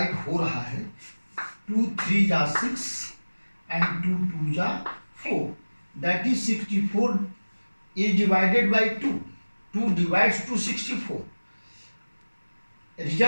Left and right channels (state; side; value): inverted; both; correlation -1.00